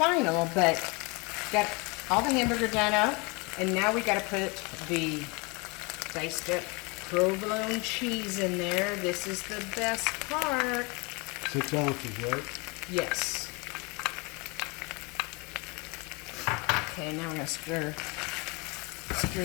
but got all the hamburger done up, and now we gotta put the diced up provolone cheese in there. This is the best part. 6 ounces, right? Yes. Okay, now we're gonna stir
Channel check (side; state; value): right; quieter; 28.7 dB